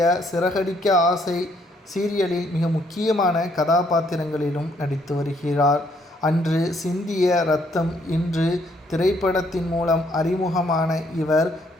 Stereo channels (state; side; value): normal; both; correlation 0.68